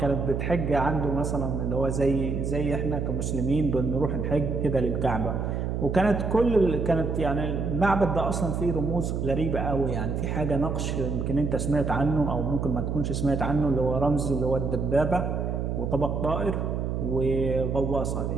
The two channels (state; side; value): noise; right; hum, 1 dB below the sound